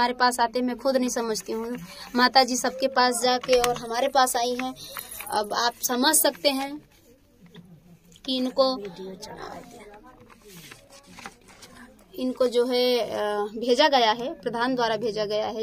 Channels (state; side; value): identical; both; correlation 1.00